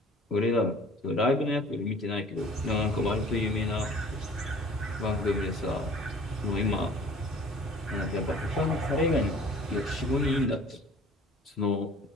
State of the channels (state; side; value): normal; both; correlation 0.48